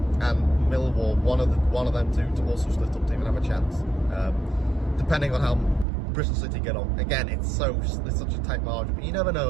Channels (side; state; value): left; drops out; at 5.9 s